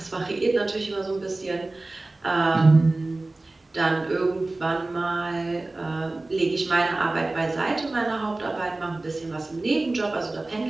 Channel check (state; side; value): quieter; left; 3.0 dB